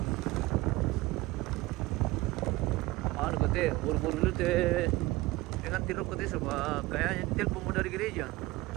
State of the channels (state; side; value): quieter; left; 19.7 dB